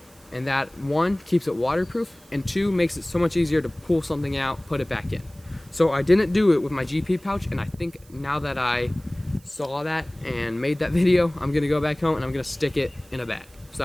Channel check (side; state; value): right; noise; hiss, 27 dB below the sound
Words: and that one keeps it waterproof, and two makes it so much easier to pull something out, put it back in. So I didn't do it with my GP pouch, and I think now that I saw that and made that video, I'm gonna go back home and I'm gonna stick it in a bag, so